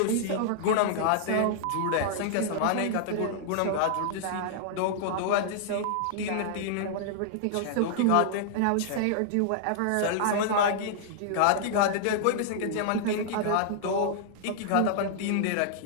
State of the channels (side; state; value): both; different; correlation -0.01